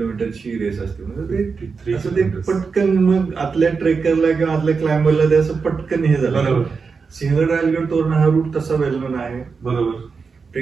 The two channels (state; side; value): quieter; left; 5.1 dB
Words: रेस असते. म्हणजे असं ते पटकन मग आतल्या ट्रेकरला किंवा आतल्या क्लाइंबरला ते असं पटकन हे झालं. सिंहगड राजगड तोरणा हा रूट तसा वेलमन आहे. बरोबर.